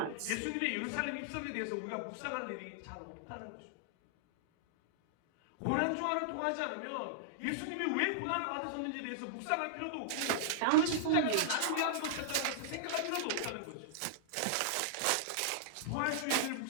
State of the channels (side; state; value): both; different; correlation -0.01